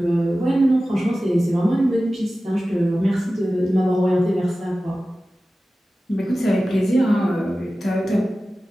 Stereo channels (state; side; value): normal; both; correlation 0.95